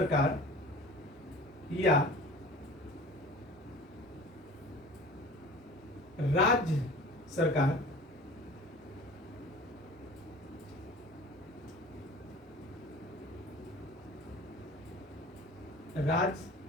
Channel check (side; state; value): both; normal; correlation 0.43